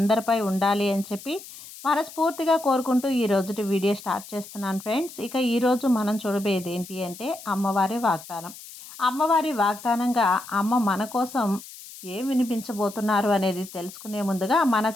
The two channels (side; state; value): left; noise; hiss, 16 dB below the sound